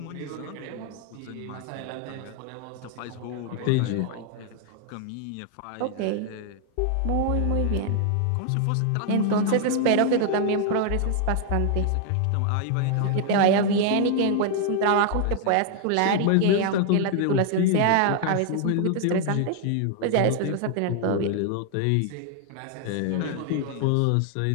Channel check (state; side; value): different; both; correlation 0.00